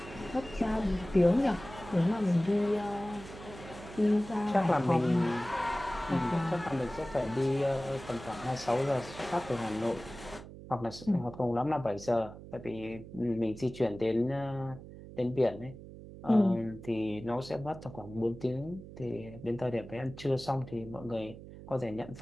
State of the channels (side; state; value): right; noise; hum, 15 dB below the sound